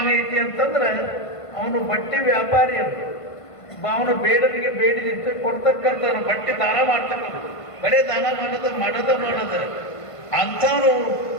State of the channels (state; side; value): late; right; 1.5 ms